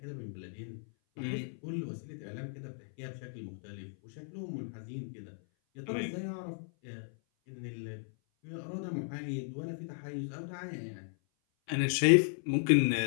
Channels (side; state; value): right; silent; 54 dB below the other